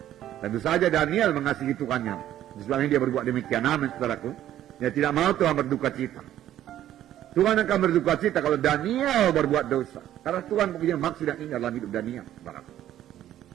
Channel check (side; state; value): left; quieter; 12.2 dB